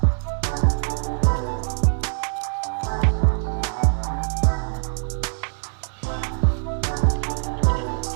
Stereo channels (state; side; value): silent; left; 62 dB below the other